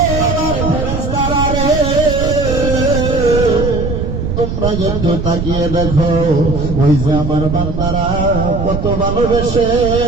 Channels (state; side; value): noise; right; rumble, 3 dB below the sound